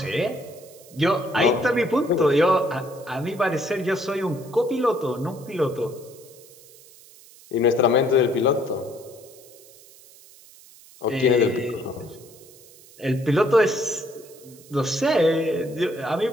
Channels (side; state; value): right; noise; hiss, 23 dB below the sound